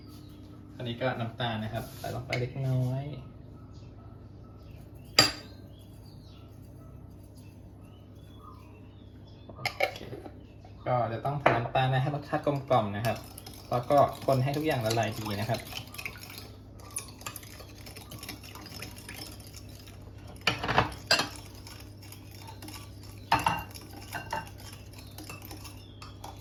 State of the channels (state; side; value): identical; both; correlation 1.00